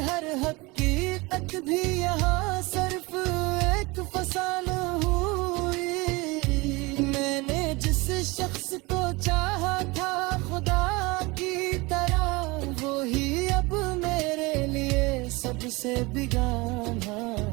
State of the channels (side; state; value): left; quieter; 24.3 dB